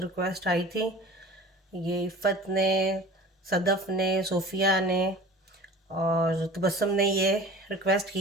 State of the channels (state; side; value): normal; both; correlation 0.41